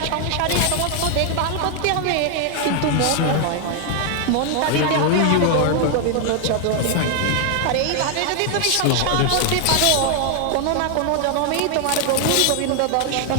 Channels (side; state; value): both; different; correlation 0.00